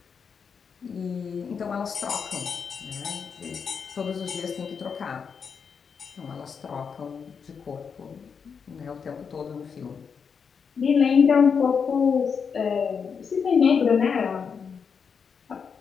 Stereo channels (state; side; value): quieter; right; 6.2 dB